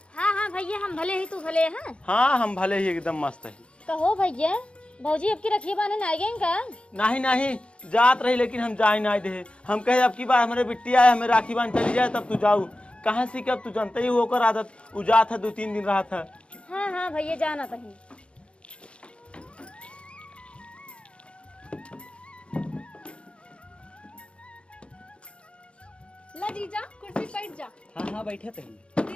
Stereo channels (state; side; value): late; right; 0.058 ms